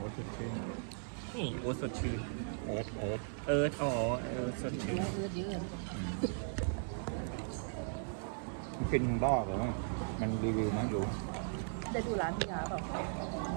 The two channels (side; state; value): left; silent; digital silence